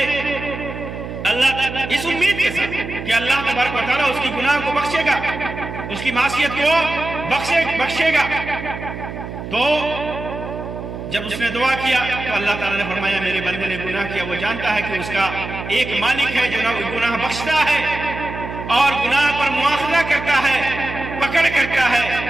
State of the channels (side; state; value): right; noise; hum, 9 dB below the sound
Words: اللہ اس امید کے ساتھ کہ اللہ تبارک و تعالیٰ اس کی گناہ کو بخشے گا، اس کی معصیت کو بخشے گا۔ تو جب اس نے دعا کیا تو اللہ تعالیٰ نے فرمایا میرے بندے نے گناہ کیا، وہ جانتا ہے کہ اس کا ایک مالک ہے جو گناہ بخشتا ہے اور گناہ پر مواخذہ کرتا ہے، پکڑ کرتا ہے۔